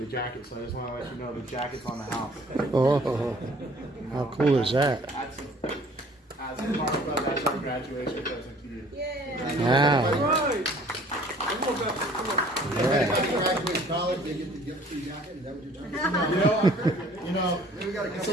jacket, so I just want to let you know the jacket's on the house. Oh, how cool is that? As a part of that's our graduation present to you. Wow. Graduate college, they get the gift free jacket. Is that what you're talking about?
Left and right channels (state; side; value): normal; both; correlation 0.54